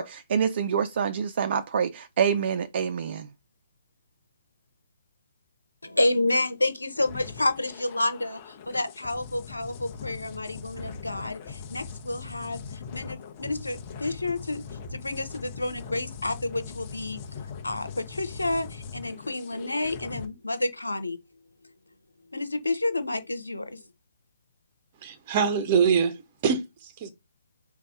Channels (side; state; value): both; inverted; correlation -0.74